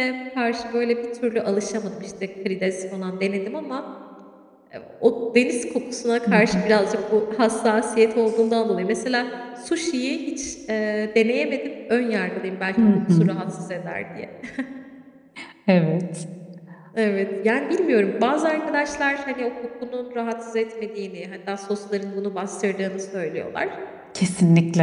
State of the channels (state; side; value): identical; both; correlation 1.00